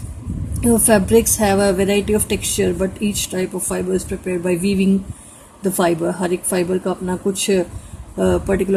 Fabrics have a variety of texture, but each type of fiber is prepared by weaving the fiber. हर एक fibre का अपना कुछ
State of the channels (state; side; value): identical; both; correlation 1.00